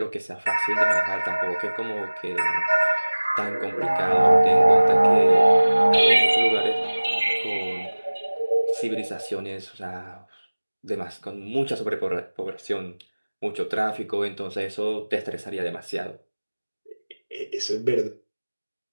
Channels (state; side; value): inverted; both; correlation -1.00